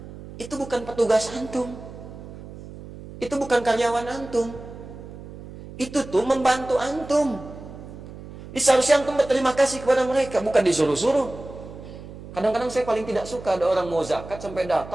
itu bukan petugas antum. Itu bukan karyawan antum. Itu tuh membantu antum. Seharusnya antum berterima kasih kepada mereka, bukan disuruh-suruh. Kadang-kadang saya paling tidak suka ada orang mau zakat sampai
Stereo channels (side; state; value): right; noise; hum, 14 dB below the sound